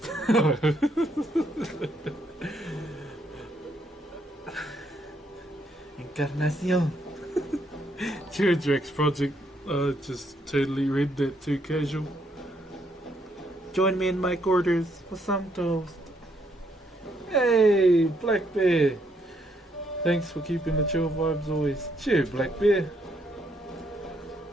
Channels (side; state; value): both; normal; correlation 0.73